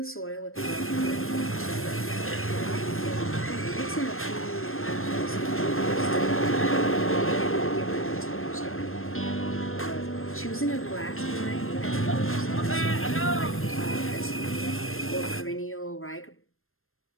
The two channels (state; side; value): late; right; 0.61 ms